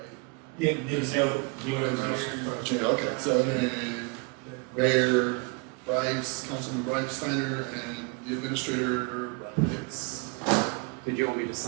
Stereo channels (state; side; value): quieter; left; 31.3 dB